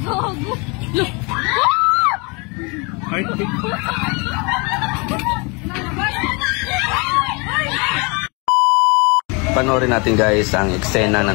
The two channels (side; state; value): right; quieter; 30.3 dB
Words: Gago. Look. Ay, Panoorin natin guys ang eksena